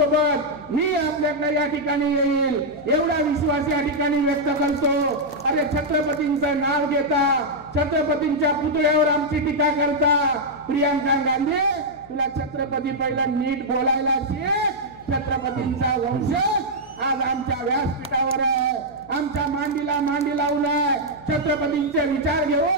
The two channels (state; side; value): noise; left; hum, 23 dB below the sound